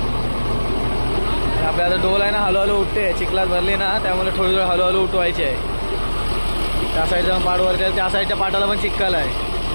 आपल्या आता डोल आहे ना हळूहळू उठते, चिखलात भरली ना त्यामुळे थोडी हळूहळू उठवायची आहे. त्या साईडचा पाट वरती आहे, त्या साईडच्या पाटाला पण चिखल आहे.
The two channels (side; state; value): both; inverted; correlation -1.00